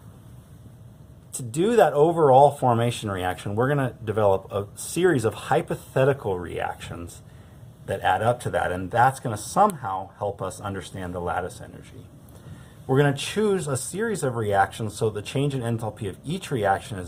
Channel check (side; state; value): both; identical; correlation 1.00